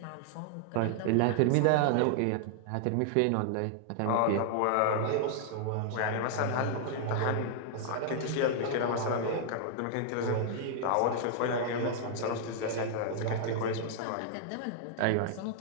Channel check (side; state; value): both; different; correlation -0.01